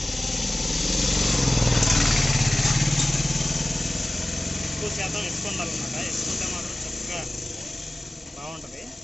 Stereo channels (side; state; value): both; normal; correlation 0.96